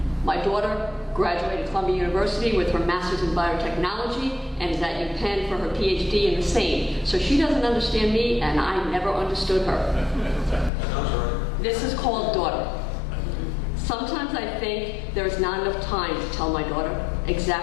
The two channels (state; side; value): drops out; right; at 10.7 s